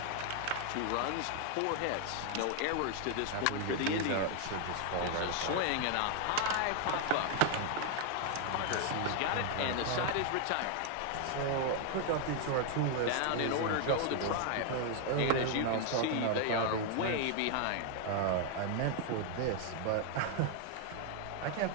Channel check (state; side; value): different; both; correlation 0.00